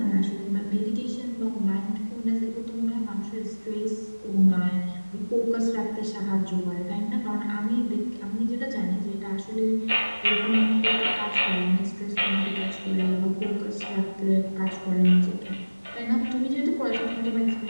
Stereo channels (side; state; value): both; inverted; correlation -1.00